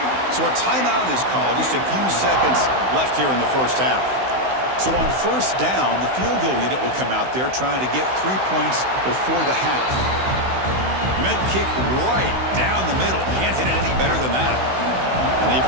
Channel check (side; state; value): left; late; 16 ms